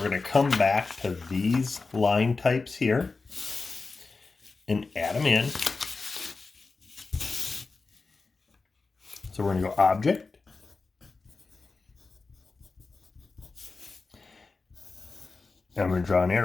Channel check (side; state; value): right; quieter; 4.0 dB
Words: going to come back to these line types here and add them in. So we're going to go Object, and I'm going to draw an